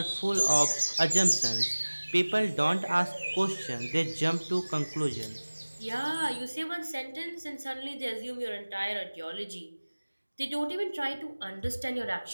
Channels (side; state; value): both; inverted; correlation -1.00